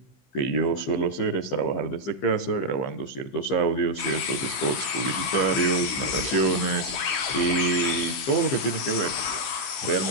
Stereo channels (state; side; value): late; right; 16 ms